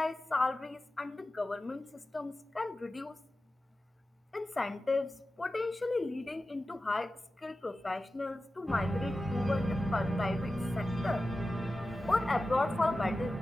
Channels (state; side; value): normal; both; correlation 0.94